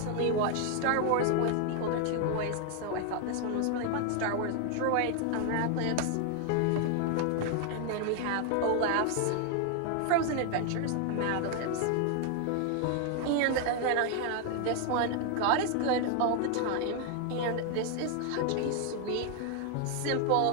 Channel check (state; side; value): different; both; correlation 0.00